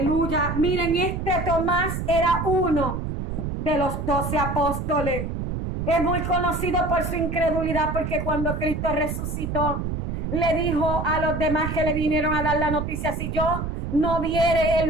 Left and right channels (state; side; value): noise; right; rumble, 4 dB below the sound